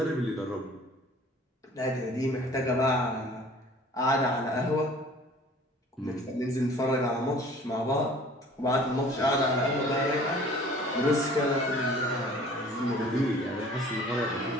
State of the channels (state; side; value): normal; both; correlation 0.49